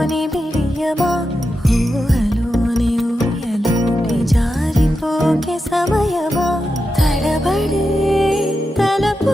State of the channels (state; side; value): normal; both; correlation 0.89